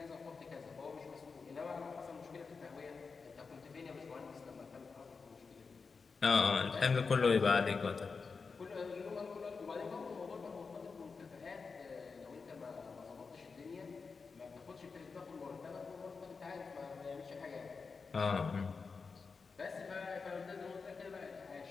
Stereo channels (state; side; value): quieter; right; 4.8 dB